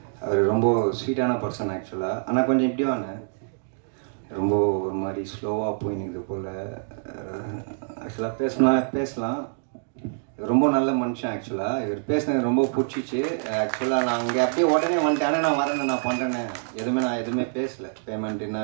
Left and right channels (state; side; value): silent; left; digital silence